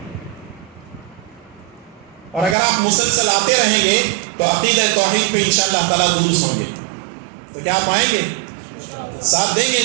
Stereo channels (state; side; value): drops out; left; at 2.6 s